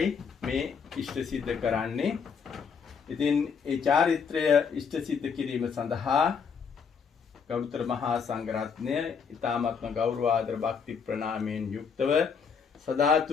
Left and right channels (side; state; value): right; quieter; 6.2 dB